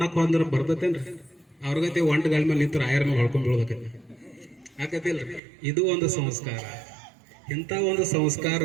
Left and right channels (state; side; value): drops out; left; at 5.4 s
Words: ಅಂದ್ರೆ ಬರ್ತತೇನ್ರಿ? ಅವ್ರಿಗತೆ ಒಂಟಗಳ ಮೇಲೆ ನಿಂತು ರಾಯರ್ನ ಹೊಳ್ಕೊಂಡ್ ಬೀಳ್ಬೇಕೈತಿ, ಆಕತಿಲ್ರಿ? ಇದು ಒಂದು ಸಂಸ್ಕಾರ. ಇಂಥ ಒಂದು